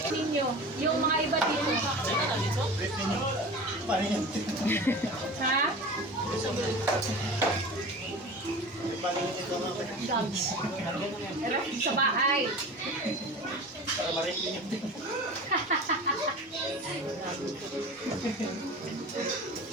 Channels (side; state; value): both; normal; correlation 0.35